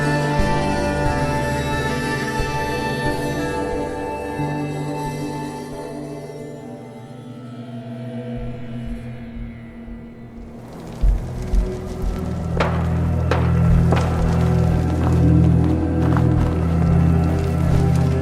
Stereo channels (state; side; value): identical; both; correlation 1.00